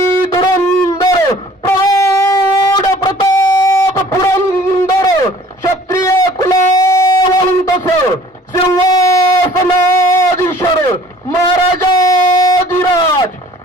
धुरंधर प्रौढ प्रताप पुरंदर क्षत्रिय कुलावंतस सिंहासनाधीश्वर महाराजाधिराज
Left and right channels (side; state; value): both; normal; correlation 0.51